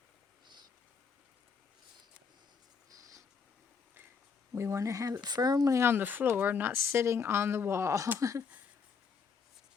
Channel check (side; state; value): right; quieter; 5.8 dB